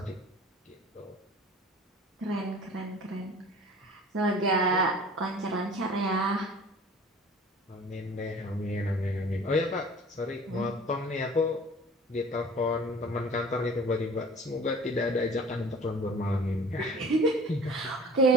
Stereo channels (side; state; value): both; normal; correlation 0.46